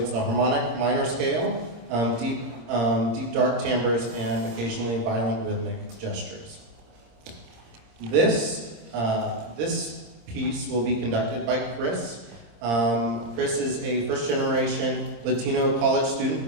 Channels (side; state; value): left; late; 26 ms